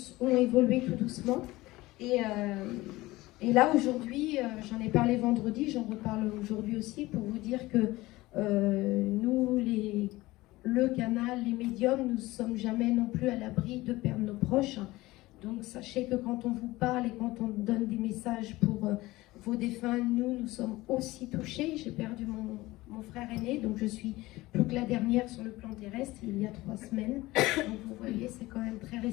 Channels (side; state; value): right; quieter; 19.1 dB